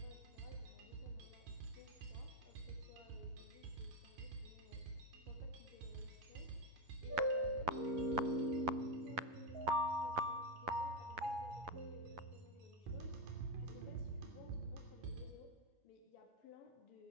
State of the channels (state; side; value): late; left; 11 ms